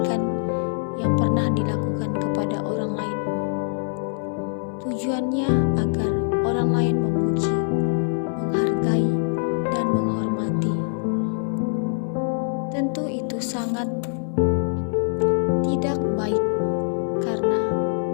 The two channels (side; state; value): right; silent; digital silence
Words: yang pernah dilakukan kepada orang lain. Tujuannya agar orang lain memuji, menghargai, dan menghormati. Tentu itu sangat tidak baik, karena